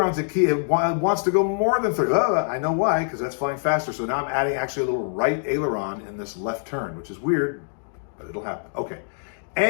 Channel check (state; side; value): silent; right; digital silence